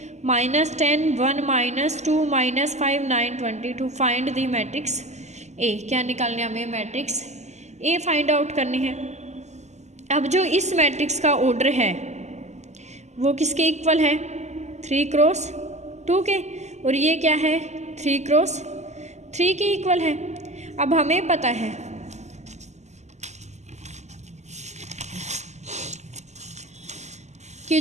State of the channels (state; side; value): late; left; 0.33 ms